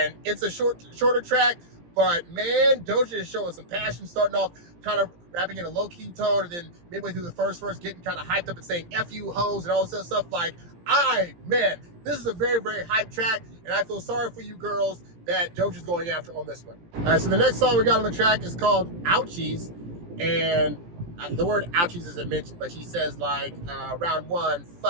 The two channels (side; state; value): left; late; 17 ms